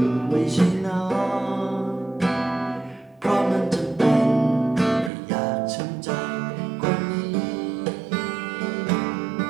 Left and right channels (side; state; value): left; drops out; at 5.1 s